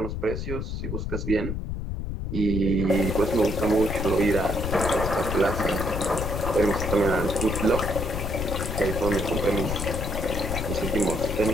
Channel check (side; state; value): left; noise; rumble, 3 dB below the sound